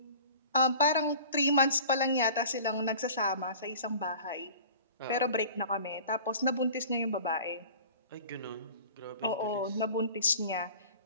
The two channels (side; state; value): both; inverted; correlation -0.43